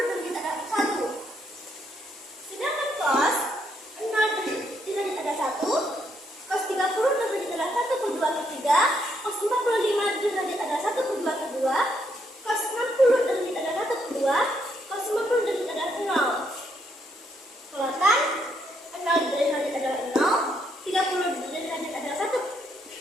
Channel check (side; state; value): both; normal; correlation 0.75